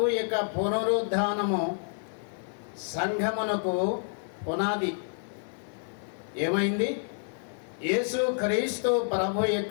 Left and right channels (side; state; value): right; silent; 59 dB below the other